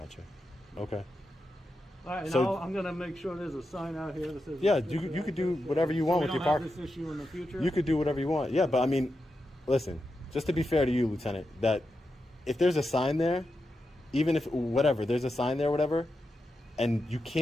Okay. All right, So- I'm gonna make sure there's a sign out here that says. Yeah, you could do whatever you want we with your don't park. have this issue in the future. You could do whatever you want. Yeah, but I mean, listen, just to be fair to you, Lieutenant, that if there's a sign there, even if whatever, there's a sign there, whatever, and you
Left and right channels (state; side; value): normal; both; correlation 0.88